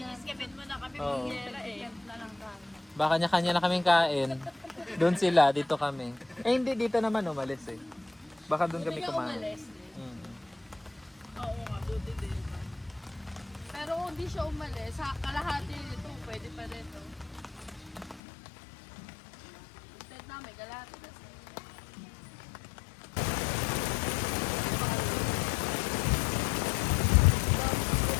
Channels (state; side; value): drops out; right; at 18.2 s